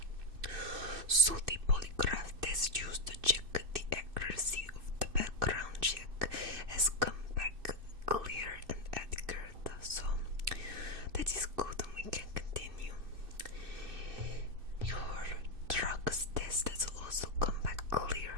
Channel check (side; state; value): left; late; 2.6 ms